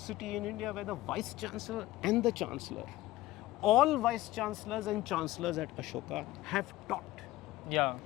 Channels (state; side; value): quieter; right; 16.5 dB